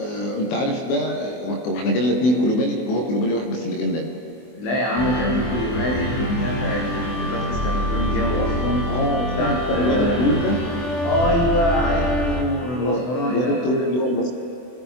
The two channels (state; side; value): late; right; 24 ms